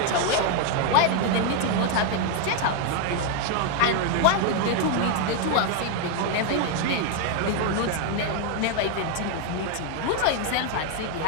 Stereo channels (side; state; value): both; different; correlation 0.01